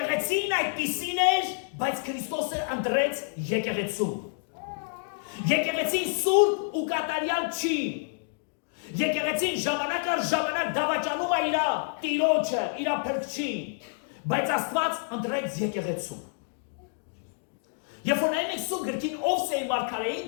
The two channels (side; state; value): right; silent; digital silence